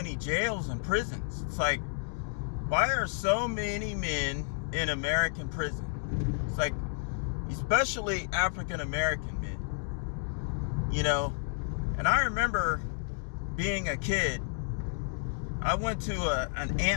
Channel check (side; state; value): right; silent; digital silence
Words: jails and prisons. It's like, why are so many men in American prison? It's like, especially African American men, you know. And I remember being a kid, I went to an